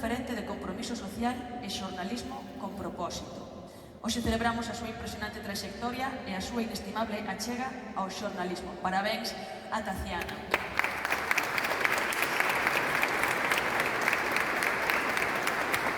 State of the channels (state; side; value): identical; both; correlation 1.00